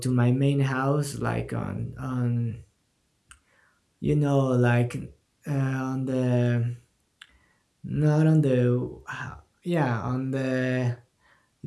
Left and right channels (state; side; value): identical; both; correlation 1.00